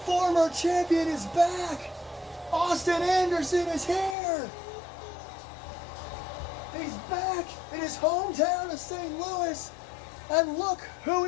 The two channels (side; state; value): right; drops out; at 4.2 s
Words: champion is back. Austin Anderson is here. He's back in his hometown of St. Louis And look who